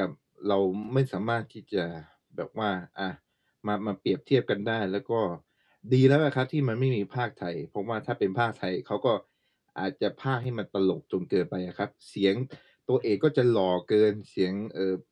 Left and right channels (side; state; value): both; identical; correlation 1.00